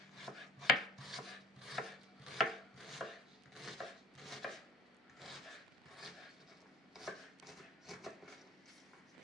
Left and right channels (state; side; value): normal; both; correlation 0.50